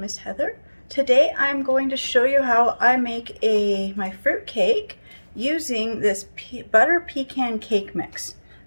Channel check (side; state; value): both; inverted; correlation -1.00